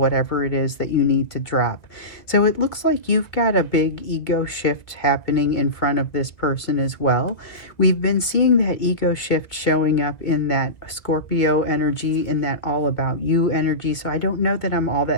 it is that you need to drop. So it looks like you've got a big ego shift happening in front of this person as well. We've been seeing that ego shift showing up in that Scorpio energy, in that all about you energy. So I don't know that I'm all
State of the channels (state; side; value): late; right; 1.7 ms